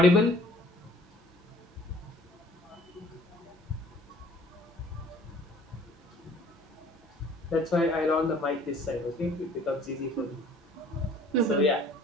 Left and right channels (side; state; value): both; normal; correlation 0.54